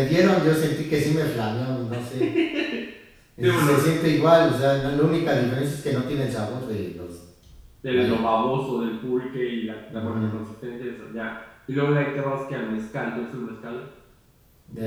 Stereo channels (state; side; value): identical; both; correlation 1.00